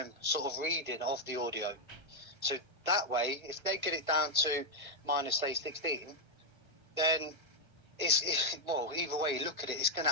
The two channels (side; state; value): left; late; 1.2 ms